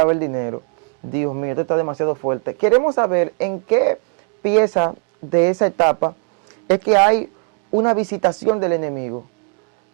el dinero. Dios mío, esto está demasiado fuerte. Queremos saber en qué pieza de esa etapa es que hay una visitación del enemigo.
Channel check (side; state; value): left; quieter; 38.4 dB